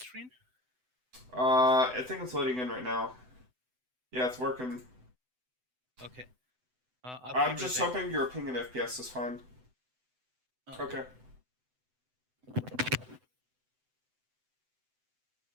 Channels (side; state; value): left; late; 7.9 ms